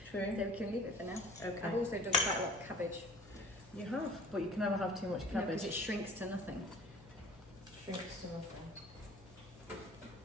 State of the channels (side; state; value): both; normal; correlation 0.46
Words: True. So we can leave it for now. Okay. I've also done quite a lot of cabbage. You have, but you can never have too much because cabbage. it shrinks to nothing. Shrinks to nothing. I'm